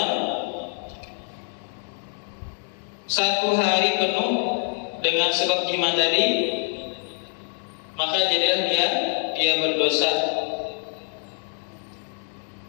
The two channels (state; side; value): silent; right; 59 dB below the other